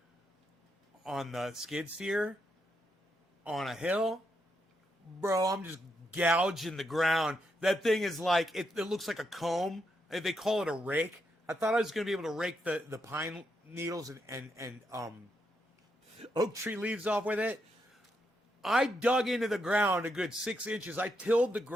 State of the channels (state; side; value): normal; both; correlation 0.81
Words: on the skid steer on a hill. Bro, I'm just gouging the ground. That thing is like, it looks like a comb. They call it a rake. I thought I was going to be able to rake the pine needles and oak tree leaves off with it. I dug into the ground a good 6 inches. I tilled the